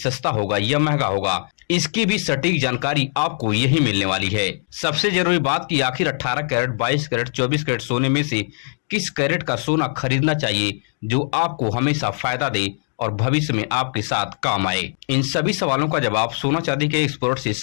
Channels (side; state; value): right; silent; digital silence